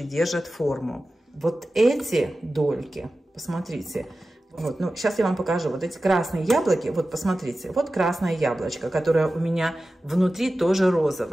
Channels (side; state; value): both; normal; correlation 0.94